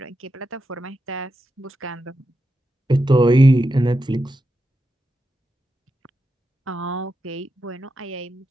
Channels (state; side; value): normal; both; correlation 0.88